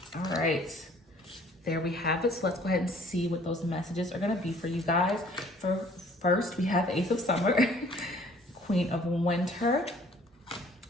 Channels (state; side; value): normal; both; correlation 0.56